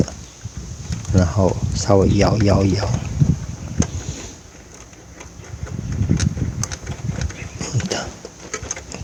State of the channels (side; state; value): both; identical; correlation 1.00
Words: 然后稍微摇，